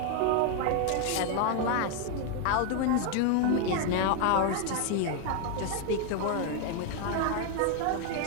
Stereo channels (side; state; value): both; different; correlation 0.00